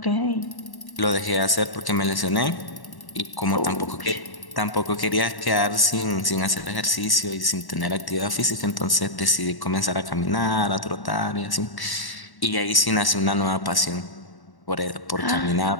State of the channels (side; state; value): right; late; 1.1 ms